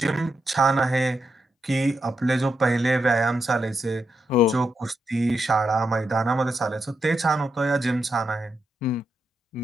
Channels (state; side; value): normal; both; correlation 0.84